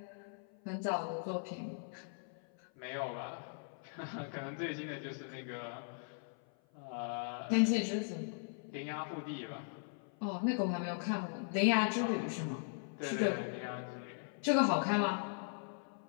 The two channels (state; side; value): silent; right; 52 dB below the other